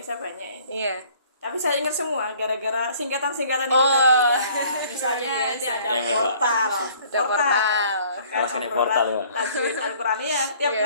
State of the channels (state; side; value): inverted; both; correlation -0.56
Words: banyak ini. Iya. Tapi saya ingat semua gara-gara singkatan-singkatan itu tadi. Ya. Misalnya ini ada portal. Portal ya. Tajwid Al-Quran ya. Tiap